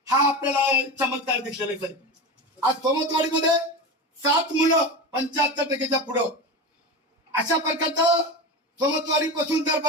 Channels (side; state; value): both; normal; correlation 0.24